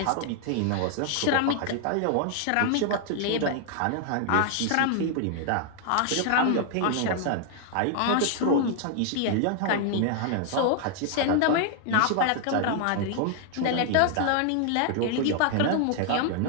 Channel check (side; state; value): both; different; correlation 0.00